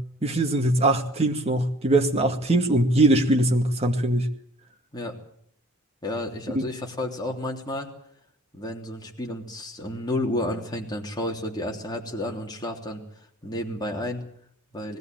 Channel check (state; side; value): normal; both; correlation 0.53